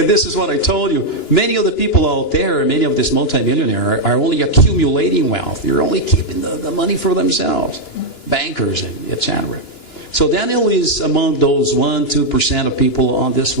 this is what I told you. Many of the people out there, many of this multimillionaires are only accumulating wealth. They're only keeping the money for themselves. Bankers and etc. So Daniel is among those 1-2% of people on this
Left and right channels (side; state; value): right; late; 2.9 ms